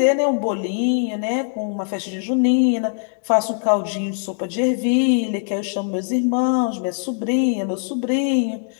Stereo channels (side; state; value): right; silent; 65 dB below the other